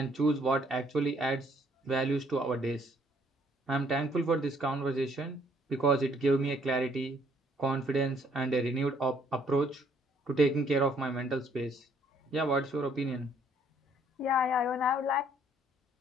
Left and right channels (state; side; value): normal; both; correlation 0.64